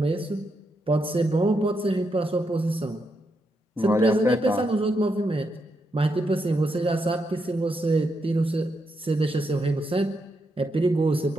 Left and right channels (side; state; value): both; normal; correlation 0.82